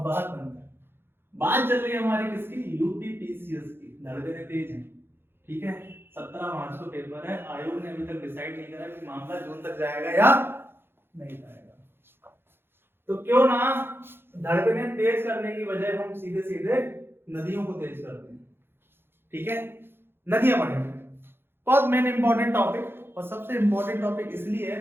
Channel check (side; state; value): left; late; 0.11 ms